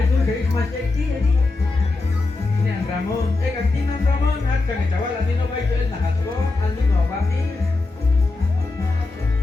dari semasa kecil ni. Ini ang Ramon. Katino Ramon at kami jawab lagi no baik tu nak aku anu no bagi.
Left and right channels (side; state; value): right; quieter; 3.4 dB